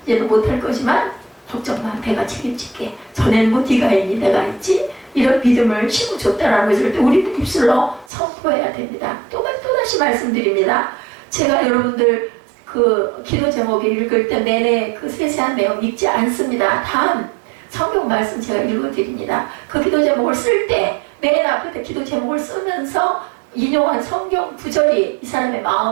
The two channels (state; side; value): drops out; left; at 8.1 s